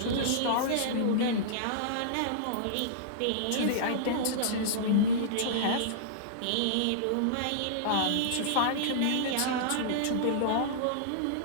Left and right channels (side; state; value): both; different; correlation -0.02